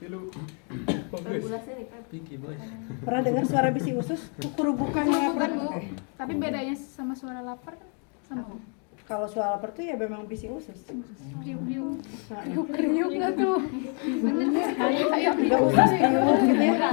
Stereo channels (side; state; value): right; quieter; 40.0 dB